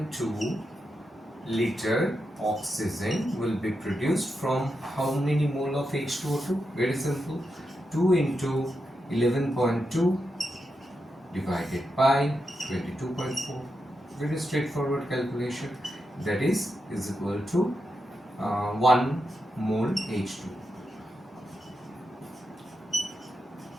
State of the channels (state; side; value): normal; both; correlation 0.86